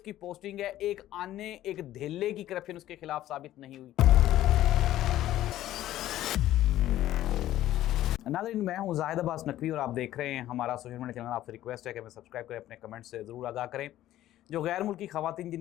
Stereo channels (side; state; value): right; quieter; 13.7 dB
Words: पोस्टिंग है, एक आने एक धेले की करप्शन उसके खिलाफ साबित नहीं हुई। नाज़रीन, मैं हूँ जाहिद अब्बास नकवी और आप देख रहे हैं हमारा सोशल मीडिया चैनल। आपसे रिक्वेस्ट है कि हमें सब्सक्राइब करें, अपने कमेंट से ज़रूर आगाह करें। जो गैर मुल्की ख़वातीन